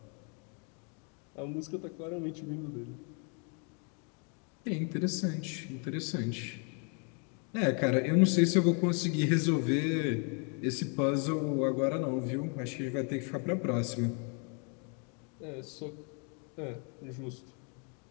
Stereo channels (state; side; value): quieter; right; 38.3 dB